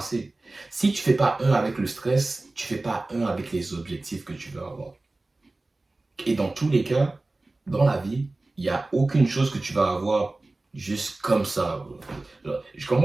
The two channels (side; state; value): left; quieter; 3.0 dB